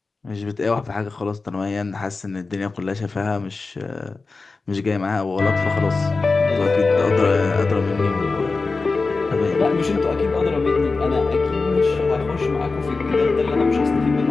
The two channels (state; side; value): quieter; right; 3.9 dB